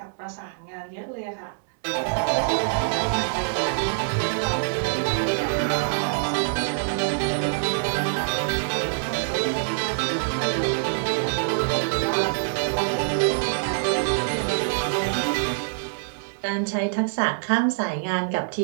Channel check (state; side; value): silent; left; digital silence